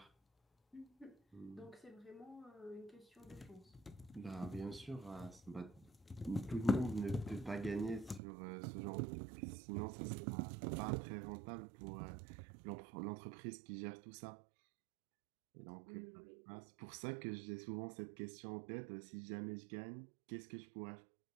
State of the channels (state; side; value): drops out; left; at 8.2 s